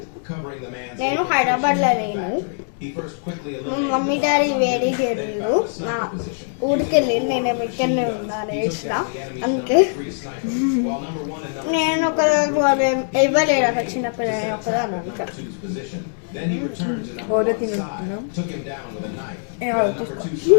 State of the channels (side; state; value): right; silent; 64 dB below the other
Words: నేను హైదరాబాద్లో లేను. మమ్మీ డాడీ వేడి చేయలేదు. మా ఊరికి వెళ్ళి నేను ఇక్కడనే ఉన్నాను వేసిన. అందుకే నేను ఒక ఇవ్వలేడు అక్కడ చిన్నపిల్లలు ఒకదాన్ని అనుకో. ఓరో తింటున్నాం